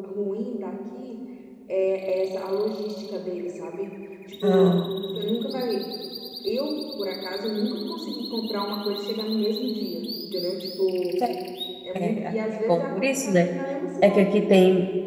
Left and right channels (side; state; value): both; identical; correlation 1.00